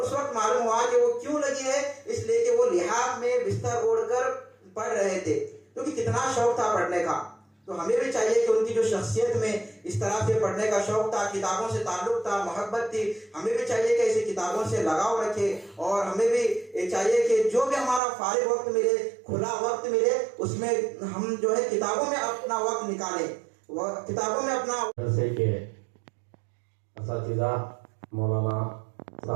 वक्त मालूम हुआ कि वो क्यों लगी है, इसलिए कि वो लिहाफ में बिस्तर ओढ़कर पढ़ रहे थे, क्योंकि कितना शौक था पढ़ने का। तो हमें भी चाहिए कि उनकी जो शख्सियत में इस तरह से पढ़ने का शौक था, किताबों से ताल्लुक था, मोहब्बत थी, हमें भी चाहिए कि ऐसी किताबों से लगाव रखें। और हमें भी चाहिए कि जो भी हमारा फारिग वक्त मिले, खुला वक्त मिले, उसमें हम जो है किताबों में अपना वक्त निकालें, किताबों में अपना। जैसे कि असातिज़ा मौलाना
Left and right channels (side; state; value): left; drops out; at 18.0 s